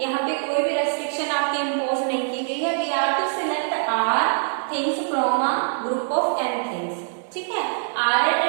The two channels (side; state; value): left; silent; digital silence